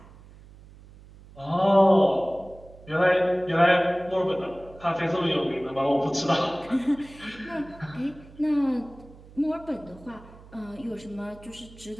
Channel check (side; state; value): right; noise; hum, 21 dB below the sound